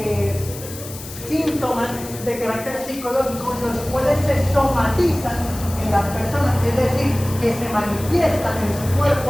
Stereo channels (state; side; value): noise; left; hiss, 13 dB below the sound